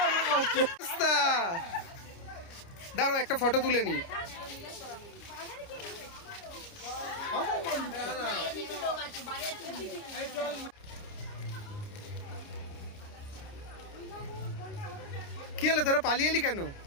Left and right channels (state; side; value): late; right; 29 ms